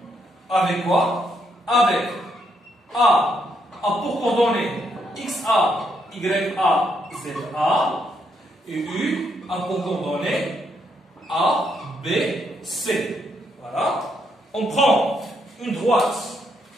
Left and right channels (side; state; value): both; normal; correlation 0.76